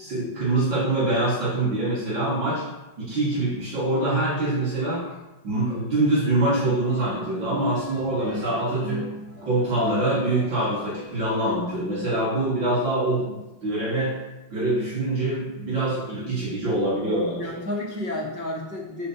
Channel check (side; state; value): left; late; 5.5 ms